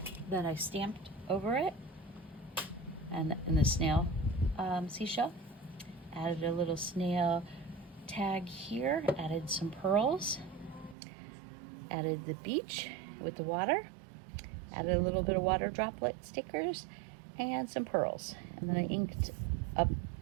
that I stamped over it, and in the snail seashell. Added a little snail tag here, added some pearls, added the beach with the water, added a little bit of water droplet stickers and some pearls, and then I inked up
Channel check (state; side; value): drops out; left; at 11.0 s